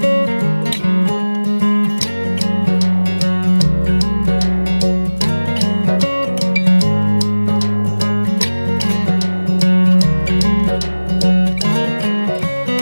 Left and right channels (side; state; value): both; inverted; correlation -1.00